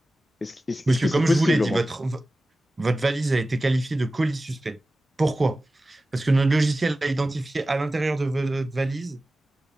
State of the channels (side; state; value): both; normal; correlation 0.96